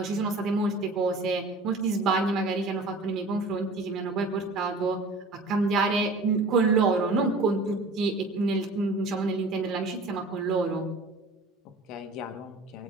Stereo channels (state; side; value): quieter; left; 3.1 dB